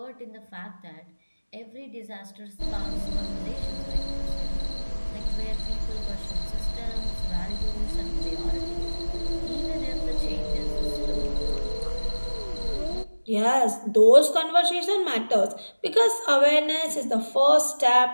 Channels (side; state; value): both; inverted; correlation -1.00